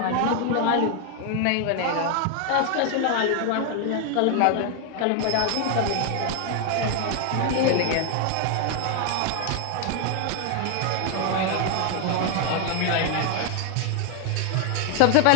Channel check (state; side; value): different; both; correlation 0.00